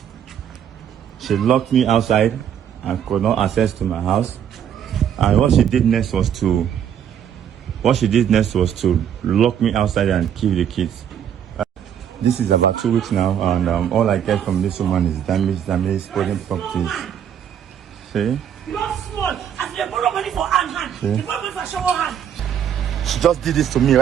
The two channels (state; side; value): quieter; left; 9.1 dB